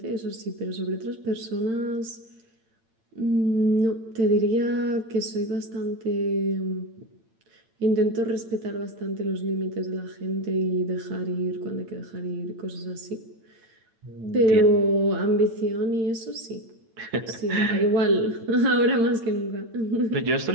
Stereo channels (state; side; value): late; left; 8.9 ms